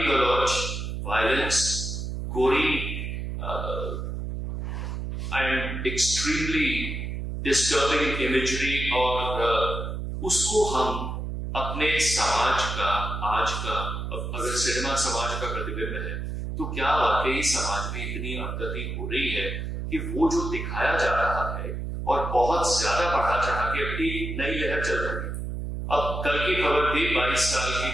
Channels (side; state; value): right; noise; hum, 4 dB below the sound